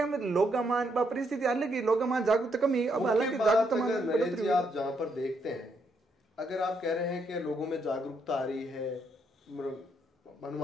में लोग परिस्थिति अलग ही लोग जागरूकता कमी। अब हालांकि जागरूकता आप जहां पर देखते हैं अगर आप कह रहे हैं कि लोगों में जागरूकता आ रही है,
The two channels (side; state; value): both; normal; correlation 0.75